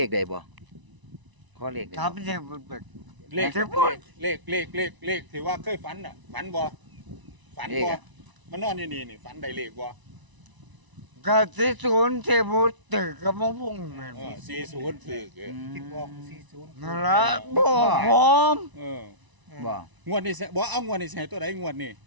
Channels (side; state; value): left; late; 1.0 ms